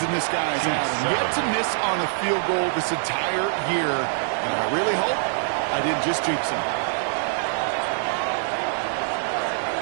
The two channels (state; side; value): silent; left; digital silence